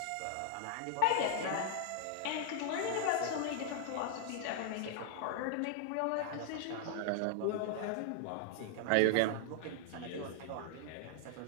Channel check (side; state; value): both; different; correlation 0.00